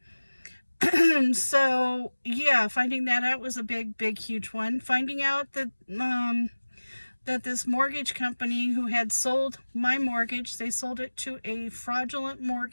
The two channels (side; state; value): both; inverted; correlation -1.00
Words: So, yeah, finding that out was a big, huge one. Finding out that this mortgage company who had sold my mortgage, they sold it to a fraudulent